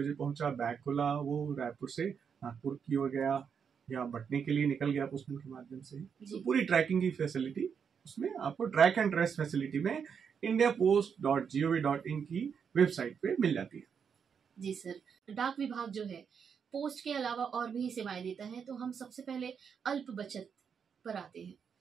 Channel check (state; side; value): quieter; left; 6.8 dB